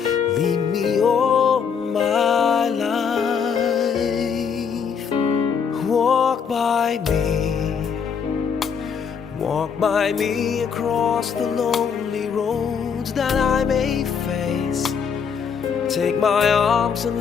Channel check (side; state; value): right; quieter; 6.6 dB